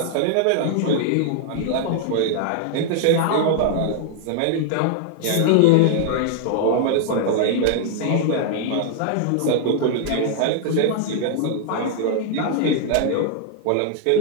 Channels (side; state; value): both; different; correlation 0.00